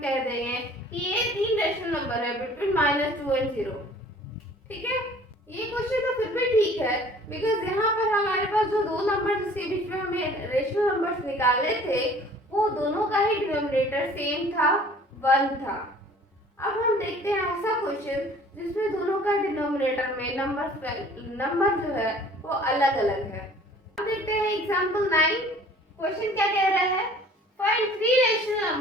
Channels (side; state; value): both; normal; correlation 0.51